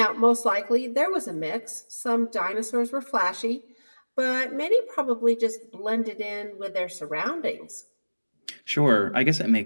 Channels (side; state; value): both; inverted; correlation -1.00